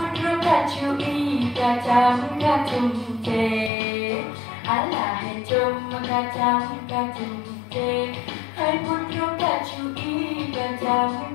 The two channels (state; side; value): drops out; right; at 3.7 s